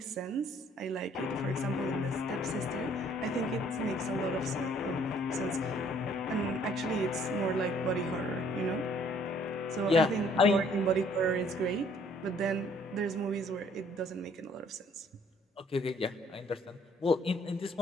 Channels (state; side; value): normal; both; correlation 0.61